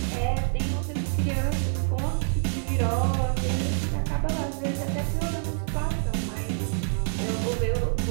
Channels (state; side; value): silent; left; digital silence